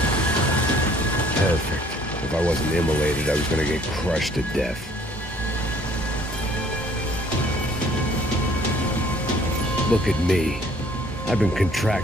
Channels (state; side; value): normal; both; correlation 0.59